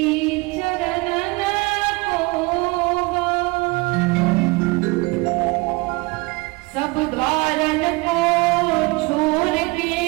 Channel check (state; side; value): quieter; left; 25.3 dB